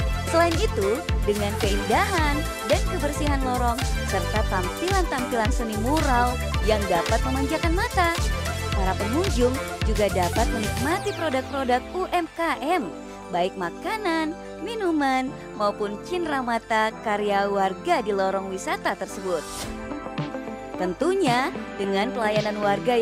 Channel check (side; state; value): both; identical; correlation 1.00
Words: Selain itu, dengan keindahan dan kebersihan lorong, serta tampilan-tampilan seni mural yang dapat memanjakan mata, para pengunjung juga dapat menikmati produk-produk UMKM, baik makanan, minuman, maupun cenderamata karya warga di lorong wisata tersebut. Tentunya dengan pelayanan warga